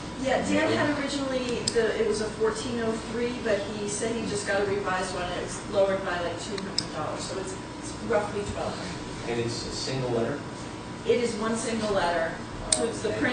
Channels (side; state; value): both; identical; correlation 1.00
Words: Yeah, Dan had originally, it was a $1,403, but he said he just got a revised one, and it was lowered by like $200, so it's roughly $1,200. And it's a single letter? It is one single letter. So it's the